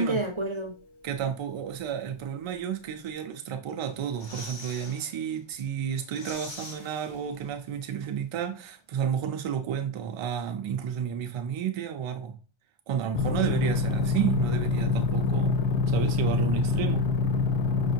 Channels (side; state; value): left; late; 1.3 ms